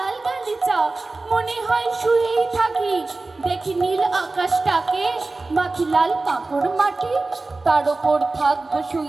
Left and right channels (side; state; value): left; quieter; 3.4 dB